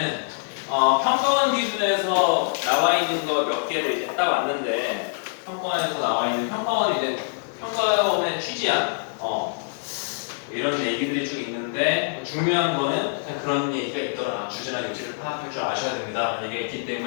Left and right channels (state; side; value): silent; right; digital silence